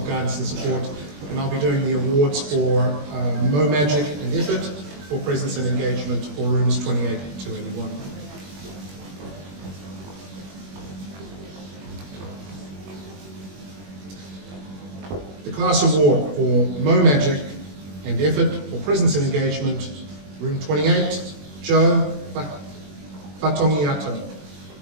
Guidance and Support, and I'll be doing the awards for Mo Magic and Effort for presence and engagement for rooms 28 to 81. The class award for Mo Magic and Effort for presence and engagement, room 28, Joe Fatongiato.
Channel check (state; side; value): late; left; 21 ms